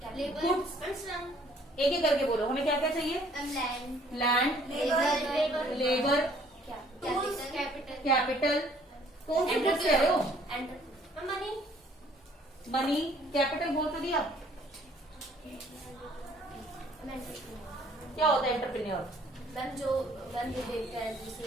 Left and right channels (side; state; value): both; normal; correlation 0.59